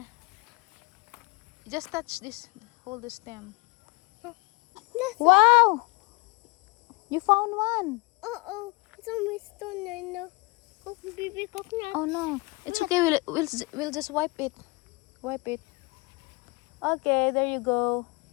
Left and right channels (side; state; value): right; quieter; 26.9 dB